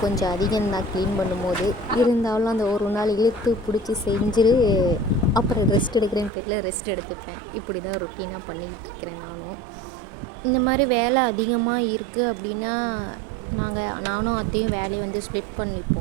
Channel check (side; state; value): left; drops out; at 6.3 s